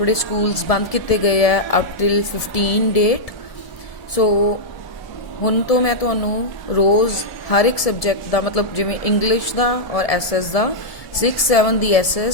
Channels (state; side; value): late; right; 1.7 ms